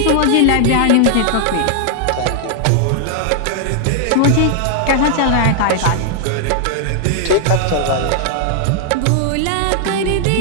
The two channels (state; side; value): different; both; correlation -0.01